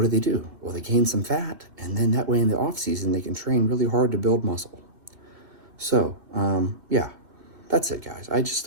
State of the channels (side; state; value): left; late; 2.4 ms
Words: do? Well, they gain some fat, and then that way in the off season they can train really hard to build muscle. So, yeah, that's it, guys.